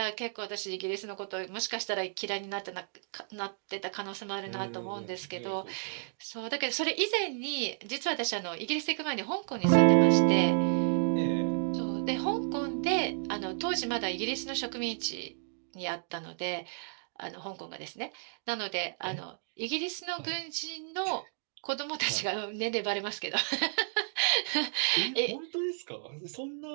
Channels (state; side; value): silent; left; digital silence